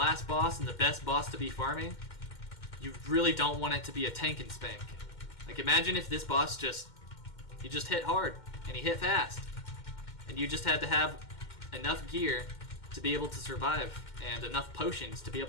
boss and the best boss to be farming, you really don't want it to be a tank and spank. Like, imagine if this boss he just hit hard and he hit fast, and you just had to have enough gear to be able to survive and enough potions to be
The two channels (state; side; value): late; right; 2.1 ms